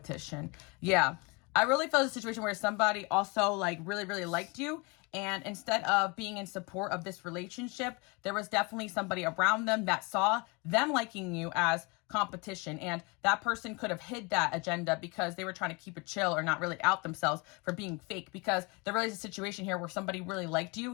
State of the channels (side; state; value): right; quieter; 28.4 dB